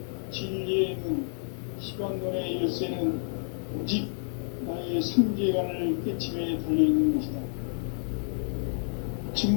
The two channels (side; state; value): right; silent; 58 dB below the other